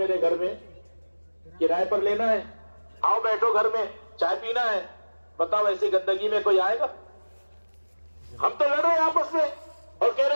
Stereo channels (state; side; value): inverted; both; correlation -1.00